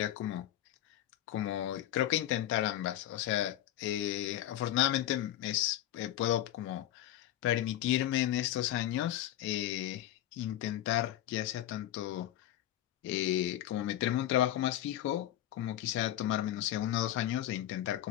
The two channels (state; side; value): quieter; right; 12.7 dB